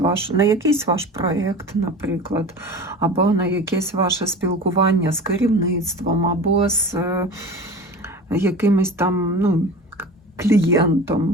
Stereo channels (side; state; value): both; normal; correlation 0.35